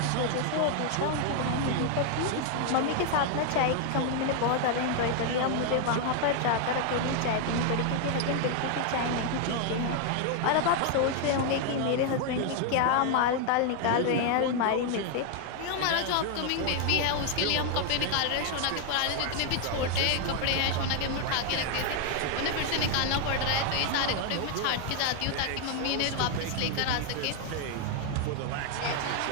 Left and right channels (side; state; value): both; different; correlation 0.00